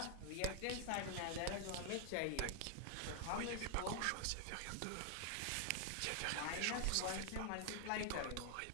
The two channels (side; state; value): both; different; correlation 0.00